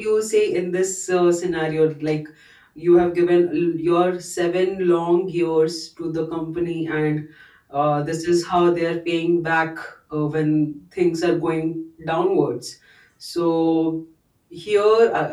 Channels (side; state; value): both; identical; correlation 1.00